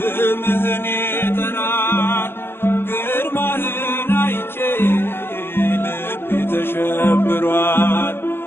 ይጠራል ግርማህን አይቼ ልቤ ተሸብሯል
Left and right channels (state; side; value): late; right; 0.11 ms